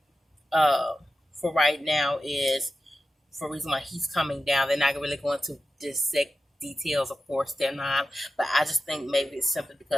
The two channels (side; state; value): both; normal; correlation 0.91